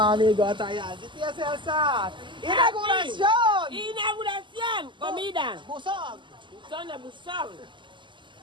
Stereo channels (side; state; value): left; late; 0.24 ms